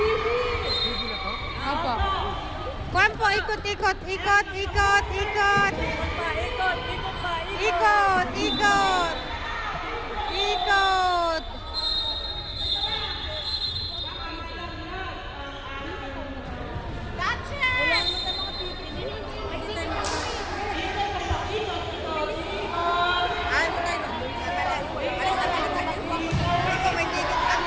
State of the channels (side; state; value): both; identical; correlation 1.00